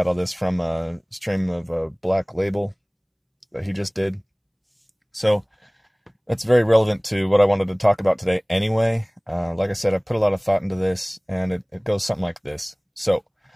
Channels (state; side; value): identical; both; correlation 1.00